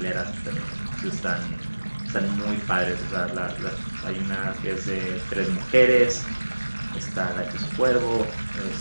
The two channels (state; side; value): inverted; both; correlation -1.00